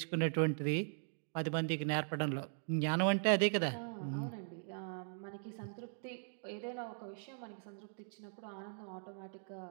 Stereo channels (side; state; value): left; silent; digital silence